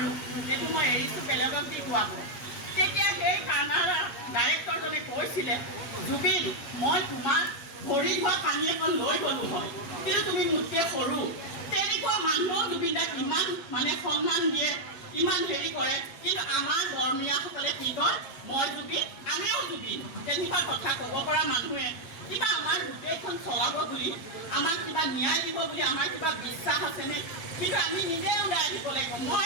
এইটো মই এৰিছোঁ, বেলেগক দি গোৱাব। তেতিয়া সেই কানাড়া ডাইৰেক্টৰজনে কৈছিলে, জুবিন, মই তোমাক ভৰি ধোৱা পানী এখন লৈ গ'লোঁ হয়, কিন্তু তুমি মোতকৈ সৰু। তেনেকুৱা মানুহো জুবিন দাক ইমান মানে সন্মান দিয়ে, ইমান হেৰি কৰে। কিন্তু আমাৰ বৰ্মীয়াসকলে কি কয়, মই জুবিন, আমিও জুবিন। তেনেকুৱা কথা ক'ব পৰা মানুহে কিবা আমাৰ গোটেইখন চলাব বুলি, আমাক কিবা ন্যায় দিব বুলি আমাৰ কিবা বিশ্বাস আছেনে? কিন্তু আমি নিজে ওলাই আহিব লাগিব। মই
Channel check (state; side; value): late; right; 7.4 ms